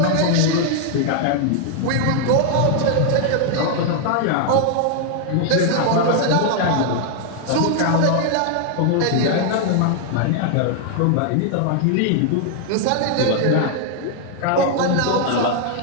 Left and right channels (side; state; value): both; different; correlation 0.00